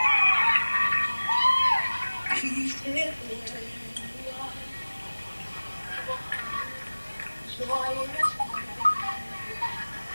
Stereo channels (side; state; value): both; inverted; correlation -1.00